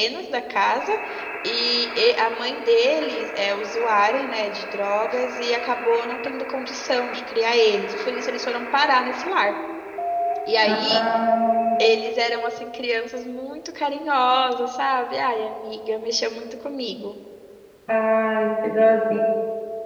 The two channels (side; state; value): both; identical; correlation 1.00